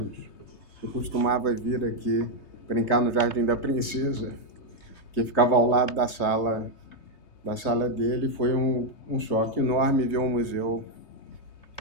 Eu costumava vir aqui brincar no Jardim da Princesa, que ficava ao lado da sala dele. Foi um choque enorme ver o museu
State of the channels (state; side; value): late; right; 3.3 ms